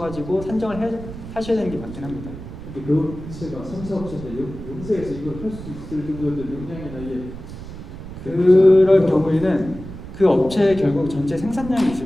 산정을 하셔야 되는 게 맞긴 합니다. 근데 그 업체가 3사업체인데 영세에서 이걸 할 수 있을 정도의 역량이나 이게 그럴 경우에는 그 업체에 결국 전체 생산량이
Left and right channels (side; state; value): right; noise; rumble, 12 dB below the sound